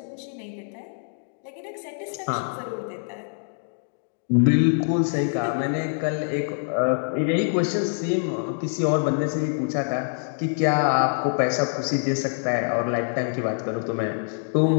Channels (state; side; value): silent; right; digital silence